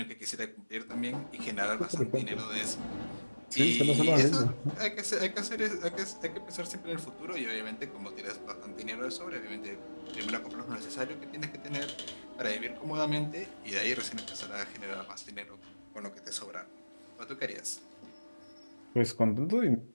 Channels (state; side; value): inverted; both; correlation -1.00